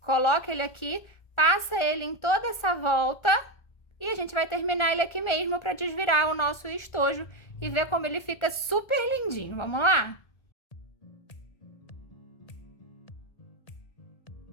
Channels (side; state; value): right; late; 1.3 ms